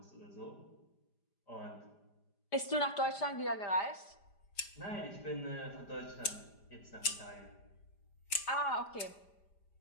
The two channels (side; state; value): right; late; 5.0 ms